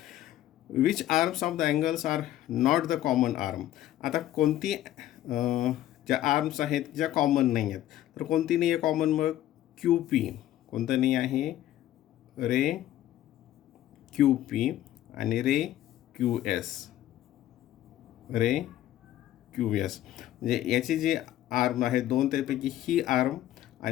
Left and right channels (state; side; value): quieter; right; 13.3 dB